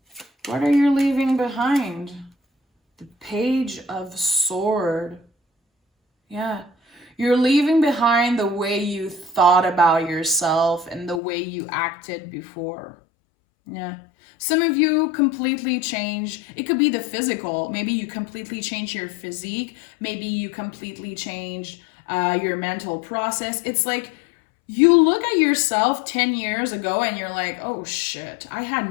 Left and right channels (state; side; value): drops out; right; at 11.2 s